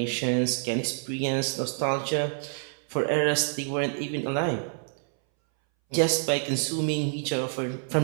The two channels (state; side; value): silent; left; 60 dB below the other